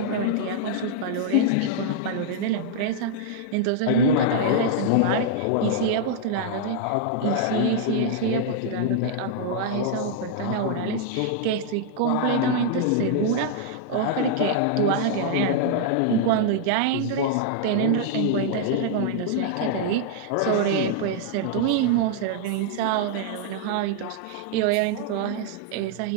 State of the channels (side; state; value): both; different; correlation -0.01